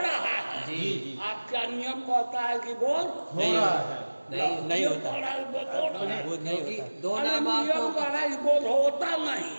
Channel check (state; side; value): inverted; both; correlation -1.00